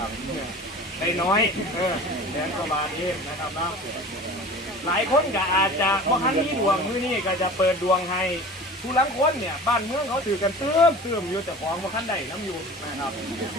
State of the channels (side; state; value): both; normal; correlation 0.39